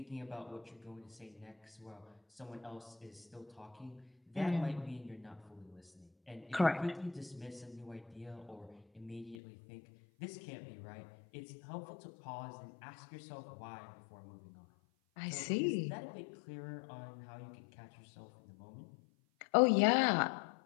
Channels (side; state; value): right; drops out; at 9.3 s